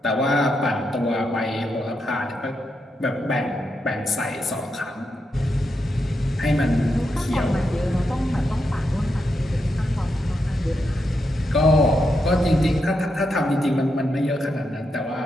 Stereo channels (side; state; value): both; normal; correlation 0.84